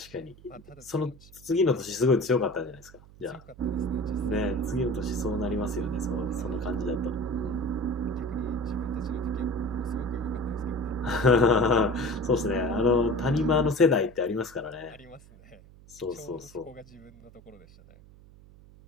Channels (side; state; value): right; noise; hum, 23 dB below the sound